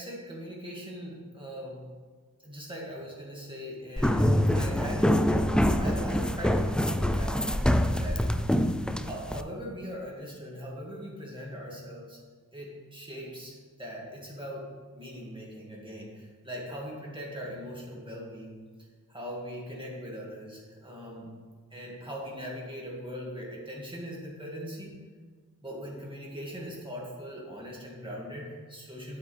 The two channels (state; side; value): normal; both; correlation 0.83